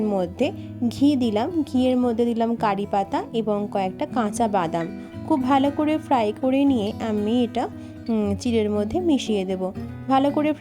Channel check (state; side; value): identical; both; correlation 1.00